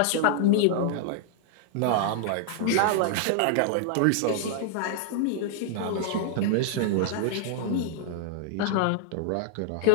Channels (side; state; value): both; different; correlation 0.00